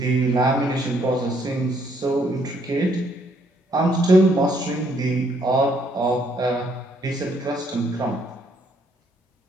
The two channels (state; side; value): normal; both; correlation 0.69